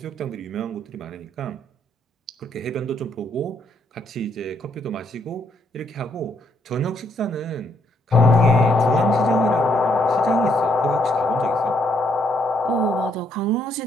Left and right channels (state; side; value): normal; both; correlation 0.72